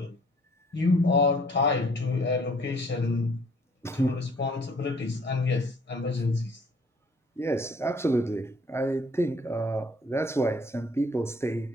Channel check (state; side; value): normal; both; correlation 0.59